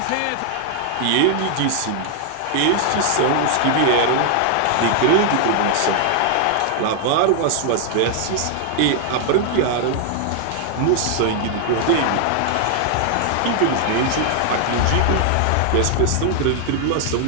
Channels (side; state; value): both; different; correlation 0.00